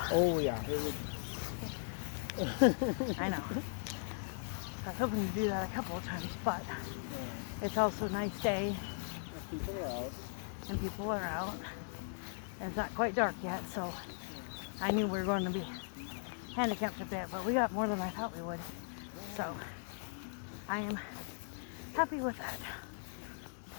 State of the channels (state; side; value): silent; right; digital silence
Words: Oh yeah. I know. I was hoping to do that a couple of times, but it's also a nice day. People are out. And people are out. And it's not quite dark yet, so I knew we were going to be handicapped a bit, but we got more than I thought we would. So I am happy with that.